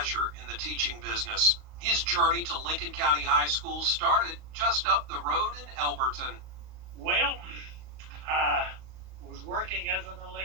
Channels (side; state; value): left; late; 38 ms